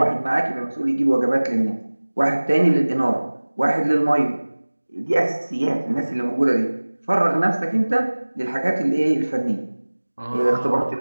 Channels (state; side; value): inverted; both; correlation -1.00